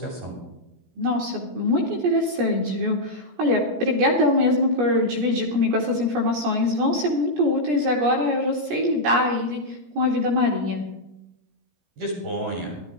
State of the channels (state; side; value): late; left; 17 ms